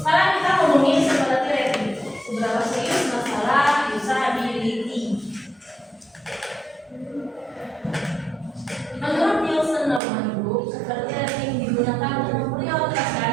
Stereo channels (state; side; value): drops out; left; at 10.0 s